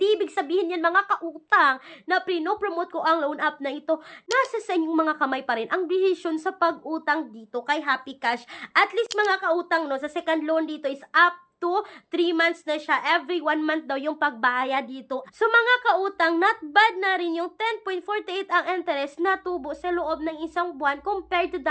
ibig sabihin yan mga kautang na pinopromote ko ang loan app na ito. Nasa sa inyong mga kamay pa rin ang decision sa pag-utang dito kay Happy Cash. At least mga kautang, no, sa second loan dito is up to 3 months na siya. Every 1 month daw yung pagbayad dito. So mga kautang, not bad na rin yung 10.48 ang interest na tubo sa loob ng isang buwan compared to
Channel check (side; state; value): both; identical; correlation 1.00